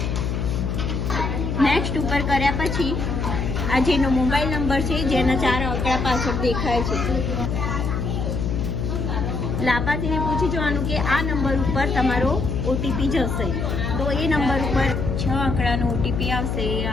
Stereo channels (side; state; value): left; noise; hum, 1 dB below the sound